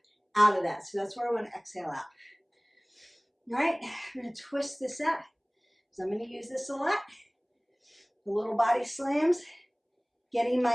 out of that. So that's where I want to exhale out. All right, I'm going to twist this out. So I'm going to use this a lot. The little body slams, getting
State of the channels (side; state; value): both; identical; correlation 1.00